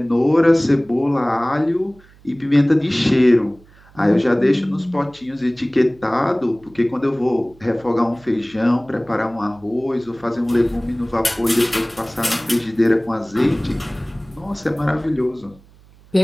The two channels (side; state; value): right; noise; hum, 27 dB below the sound